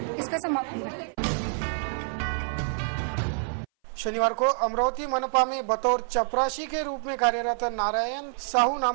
इसका समापन करती हैं। शनिवार को अमरावती मनपा में बतौर चपरासी के रूप में कार्यरत नारायण साहू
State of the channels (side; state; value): left; silent; 58 dB below the other